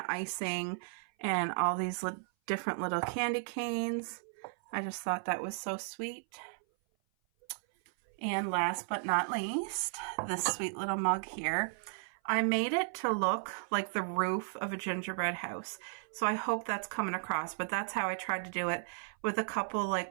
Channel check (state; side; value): silent; left; 55 dB below the other